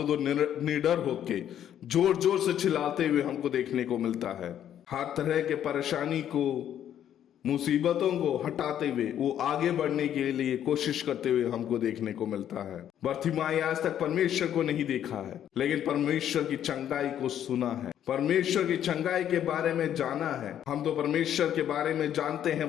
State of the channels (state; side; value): quieter; right; 10.3 dB